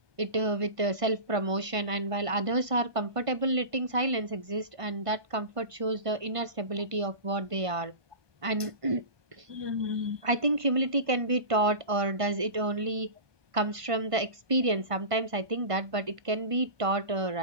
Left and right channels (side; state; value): left; late; 1.5 ms